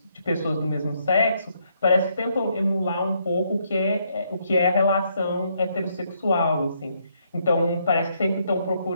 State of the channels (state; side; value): inverted; both; correlation -0.73